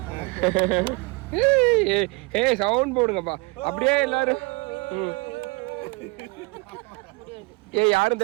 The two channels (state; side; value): quieter; left; 27.8 dB